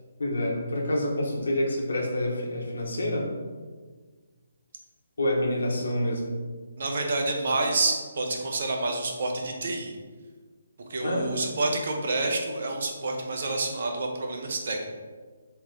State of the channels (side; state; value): both; inverted; correlation -0.80